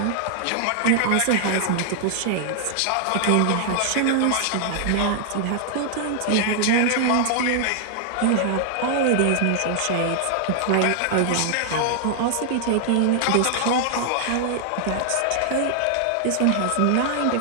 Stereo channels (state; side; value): different; both; correlation 0.00